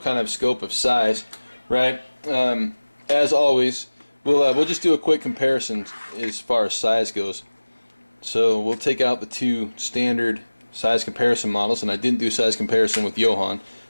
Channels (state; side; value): inverted; both; correlation -1.00